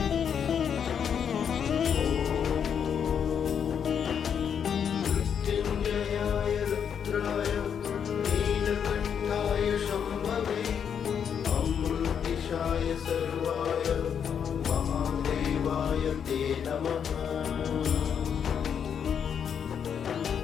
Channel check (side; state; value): right; quieter; 7.8 dB